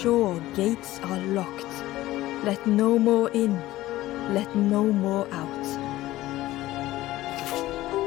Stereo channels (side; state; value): right; quieter; 16.3 dB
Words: gates are locked. Let no more in. Let no more out."